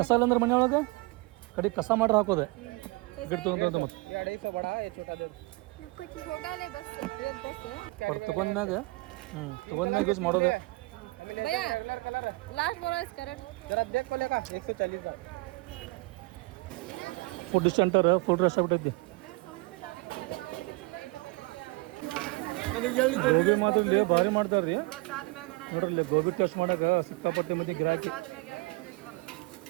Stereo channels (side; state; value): left; quieter; 24.4 dB